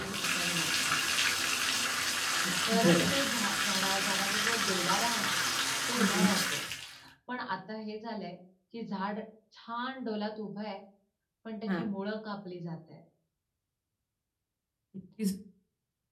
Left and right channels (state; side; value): identical; both; correlation 1.00